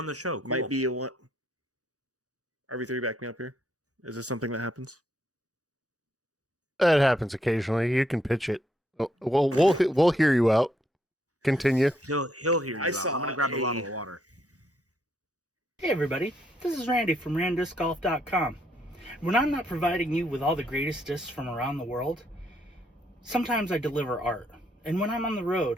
the show. Cool. Might be a one. RV3, back me up here. Is this something that happens? That happens occasionally. You can pitch it. Well, we'll hear you out. Continue. He'll hear you. I'm going to grab a bottle of water. Hey everybody, this is Randy from randdiscgolf.com. When I'm not providing you with all the greatest discs from around the world, sometimes I deliver art. And when I'm on the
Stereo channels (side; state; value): both; normal; correlation 0.74